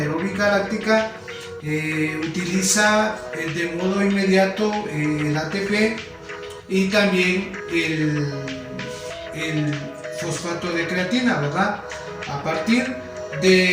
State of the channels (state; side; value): identical; both; correlation 1.00